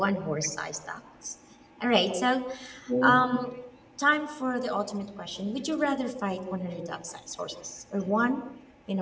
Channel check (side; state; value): both; identical; correlation 1.00